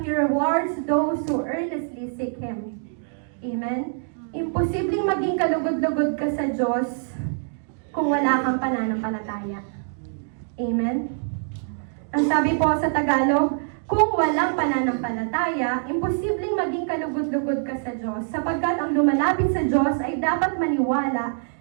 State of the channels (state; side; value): silent; left; digital silence